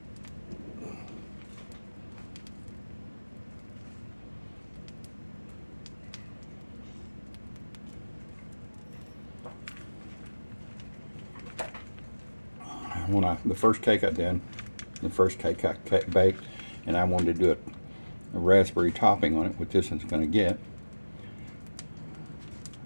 The first cake I did, the first cake I baked, and I wanted to do a raspberry topping on it, which this is going to get.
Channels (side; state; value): both; inverted; correlation -1.00